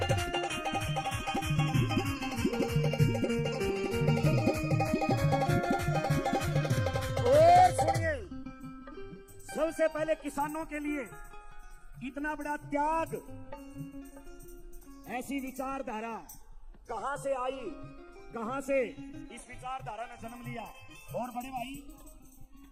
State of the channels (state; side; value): identical; both; correlation 1.00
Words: सबसे पहले किसानों के लिए इतना बड़ा त्याग, ऐसी विचारधारा कहां से आई, कहां से इस विचारधारा ने जन्म लिया। और बड़े भाई